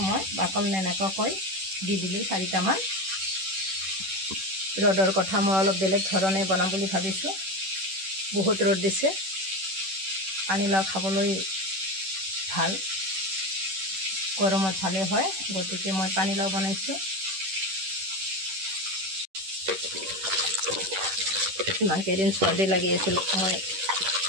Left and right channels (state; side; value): late; left; 10 ms